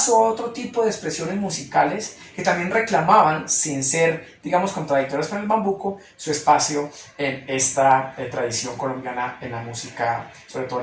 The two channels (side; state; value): both; identical; correlation 1.00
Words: a otro tipo de expresiones musicales que también reclamaban, sin ser, digamos, contradictorias con el bambuco, su espacio en esta tradición colombiana en la música, sobre todo